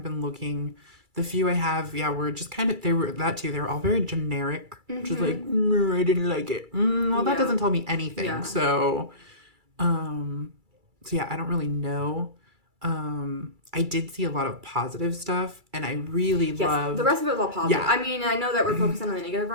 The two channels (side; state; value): left; late; 2.3 ms